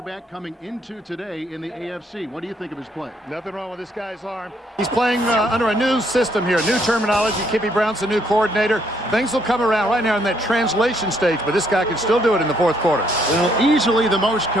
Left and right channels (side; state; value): both; normal; correlation 0.69